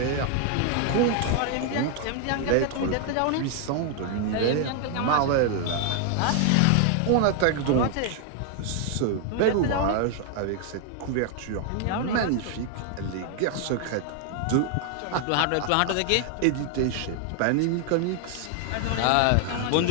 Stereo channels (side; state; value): both; different; correlation 0.00